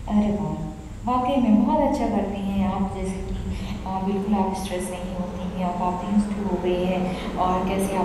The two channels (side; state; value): both; identical; correlation 1.00